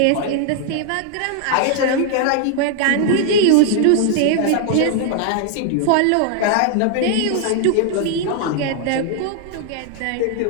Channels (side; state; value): both; different; correlation 0.00